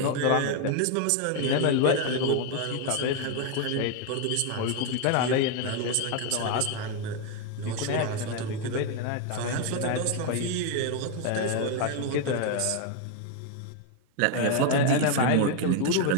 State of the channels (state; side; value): different; both; correlation 0.01